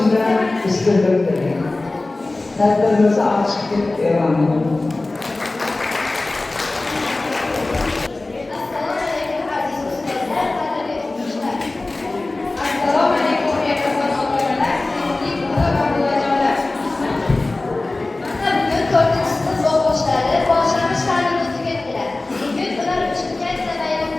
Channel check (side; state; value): right; quieter; 3.0 dB